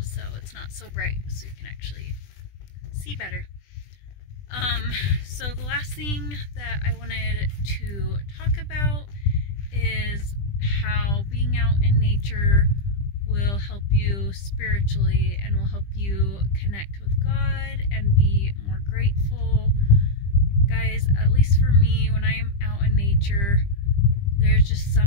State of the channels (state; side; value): late; right; 20 ms